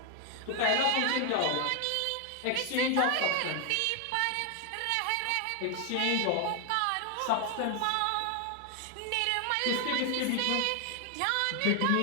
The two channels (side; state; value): both; different; correlation 0.00